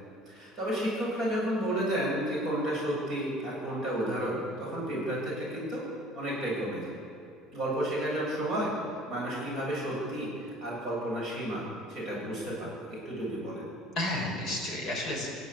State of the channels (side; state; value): both; normal; correlation 0.50